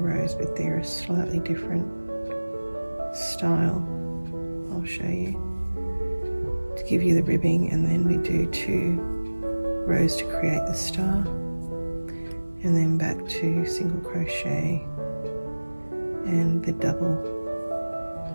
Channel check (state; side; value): inverted; both; correlation -1.00